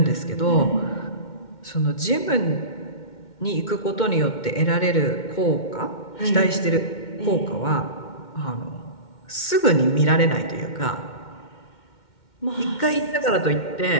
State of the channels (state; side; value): late; right; 2.1 ms